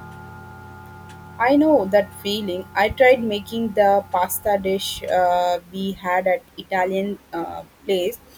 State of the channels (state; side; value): identical; both; correlation 1.00